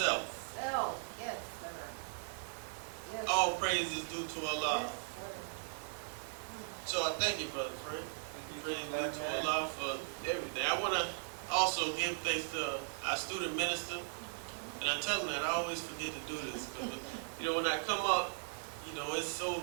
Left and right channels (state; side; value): silent; left; digital silence